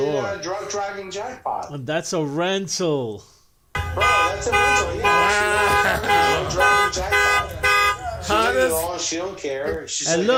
drunk driving jackpot. That's a rental. Bro, that's a rental. Yeah. Drunk driving jackpot. She did it all. She don't care. She's And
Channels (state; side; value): identical; both; correlation 1.00